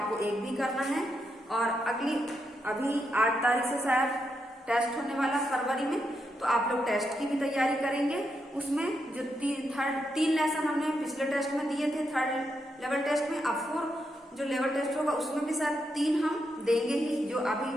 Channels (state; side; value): normal; both; correlation 0.82